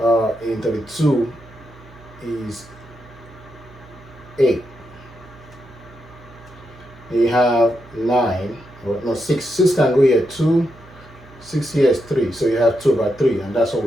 in 32 is 8. You have 9, or no, 6. 6 can go here, 2. 6 here is 3, so you have 2 by 3, and that's what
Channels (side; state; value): right; noise; hum, 23 dB below the sound